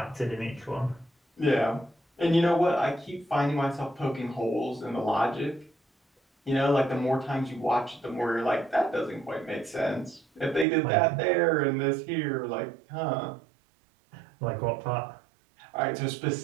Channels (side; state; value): left; drops out; at 10.7 s